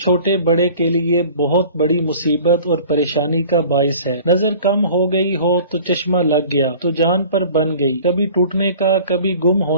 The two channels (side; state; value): both; inverted; correlation -0.46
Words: چھوٹے بڑے کے لیے بہت بڑی مصیبت اور پریشانی کا باعث ہے۔ نظر کم ہو گئی ہو تو چشمہ لگ گیا تو جان پر بن گئی، کبھی ٹوٹنے کا کبھی گم